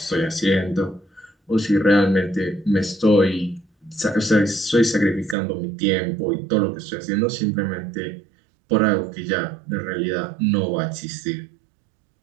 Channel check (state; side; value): drops out; left; at 5.4 s